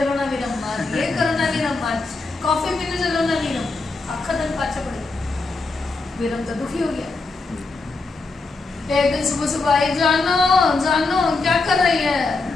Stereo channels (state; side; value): quieter; right; 3.7 dB